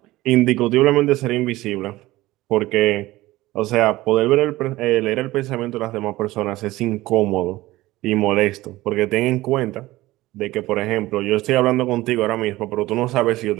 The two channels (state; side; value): quieter; left; 18.0 dB